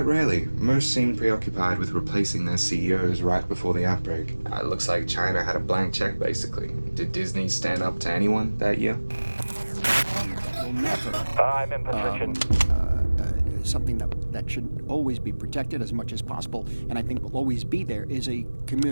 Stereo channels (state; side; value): inverted; both; correlation -1.00